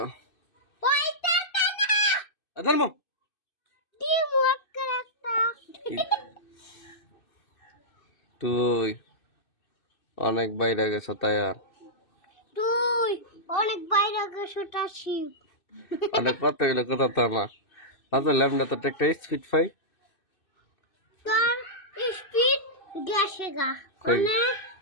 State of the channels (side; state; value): right; late; 2.6 ms